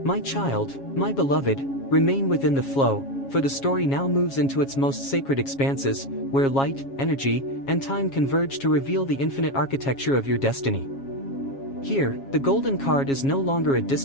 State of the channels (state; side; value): late; right; 7.3 ms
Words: My child, my beloved, remain within the flow, for the story now moves into its most sacred expanses, where light, energy, and time converge to reveal the infinite architecture of your destiny. Here, the golden card is no longer a